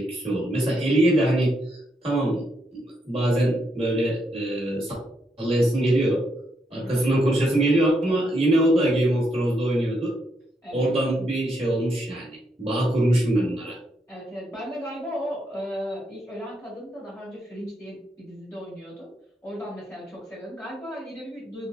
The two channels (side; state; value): both; normal; correlation 0.79